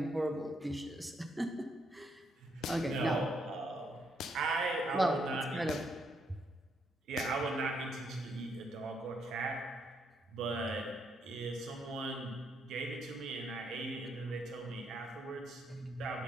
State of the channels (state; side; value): normal; both; correlation 0.75